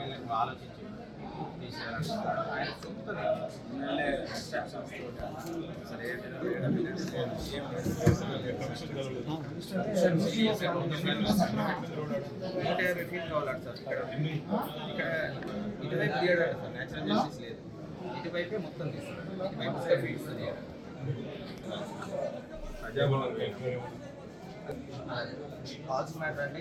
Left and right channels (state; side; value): identical; both; correlation 1.00